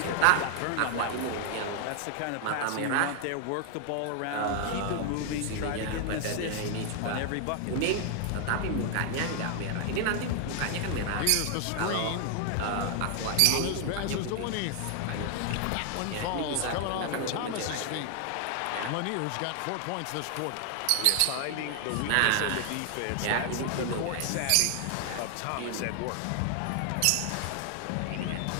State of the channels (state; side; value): different; both; correlation 0.00